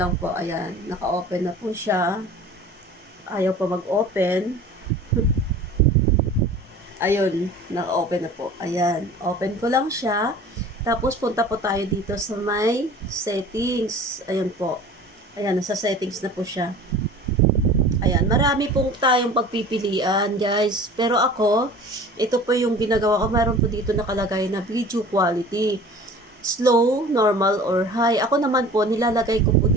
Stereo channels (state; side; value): normal; both; correlation 0.42